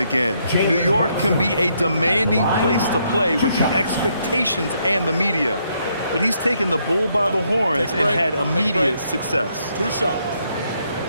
New York can be a demanding place to play with the expectations and the media. But he's taken the bull by the horns and had immediate success. 2 shots.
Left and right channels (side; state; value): both; inverted; correlation -0.74